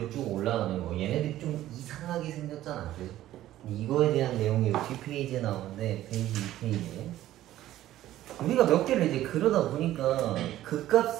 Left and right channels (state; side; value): quieter; left; 13.9 dB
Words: 쭉 올라가는 거. 얘네들이 좀 이상하게 생겼잖아. 그래서 이거에 대한 내용이 뒷페이지에 나오는데 페이지 2페이지에 우리가 몇 개를 이제 그러다 보니까